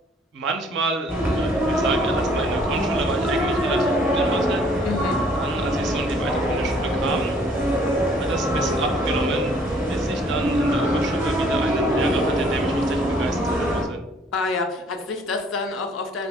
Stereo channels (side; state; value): both; normal; correlation 0.60